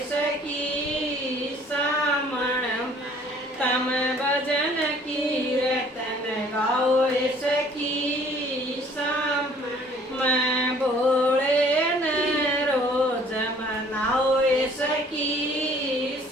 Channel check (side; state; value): both; normal; correlation 0.56